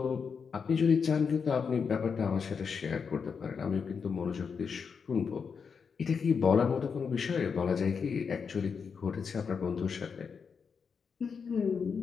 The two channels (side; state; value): right; quieter; 6.0 dB